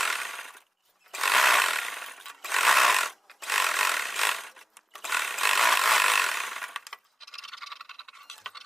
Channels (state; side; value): normal; both; correlation 0.96